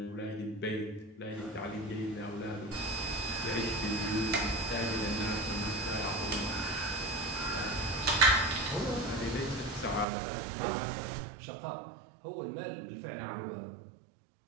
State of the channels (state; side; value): drops out; left; at 10.1 s